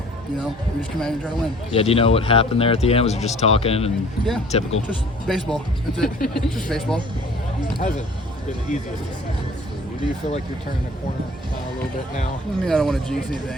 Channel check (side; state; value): both; normal; correlation 0.50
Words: you know, we just come out and try to win. Yeah, do you know what happened there at the end? Was it just talking and typical? Just baseball. That's it. Just baseball. Hasn't been the easiest of seasons for you. Do you feel like you're turning a corner a little bit now? I mean, I don't want to jinx